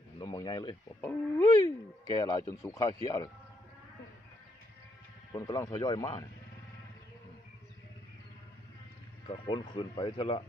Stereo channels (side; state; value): both; normal; correlation 0.75